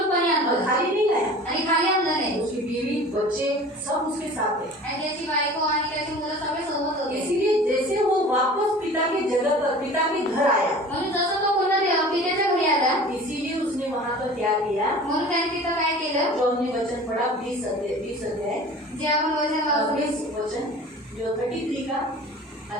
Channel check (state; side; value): normal; both; correlation 0.42